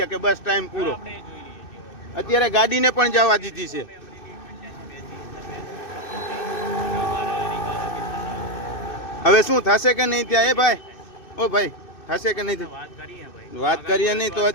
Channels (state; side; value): late; right; 2.6 ms